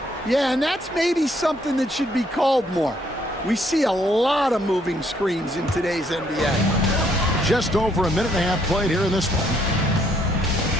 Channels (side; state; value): both; normal; correlation 0.69